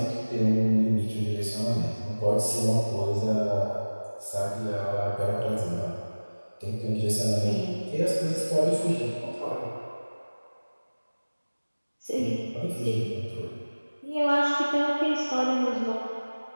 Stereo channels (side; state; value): both; inverted; correlation -1.00